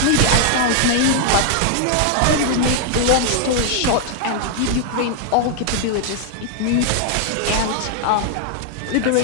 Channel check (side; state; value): both; different; correlation 0.00